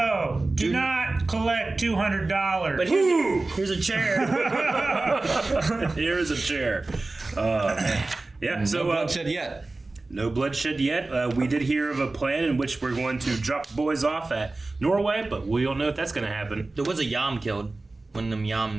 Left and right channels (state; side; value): quieter; left; 3.2 dB